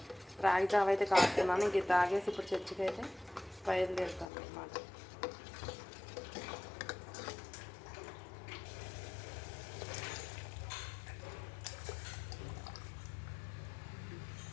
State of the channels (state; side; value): drops out; right; at 4.2 s